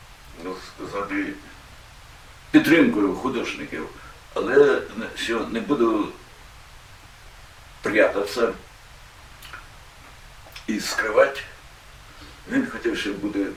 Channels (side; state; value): both; identical; correlation 1.00